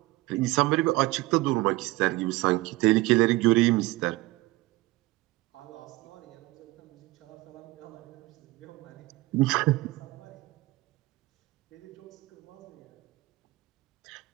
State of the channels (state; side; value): quieter; left; 19.9 dB